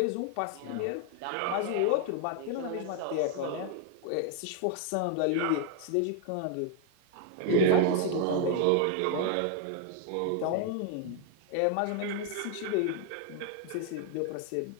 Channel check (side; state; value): both; different; correlation 0.00